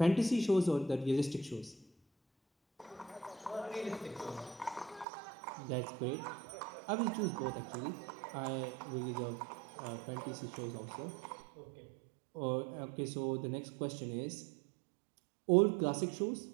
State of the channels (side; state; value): left; drops out; at 5.1 s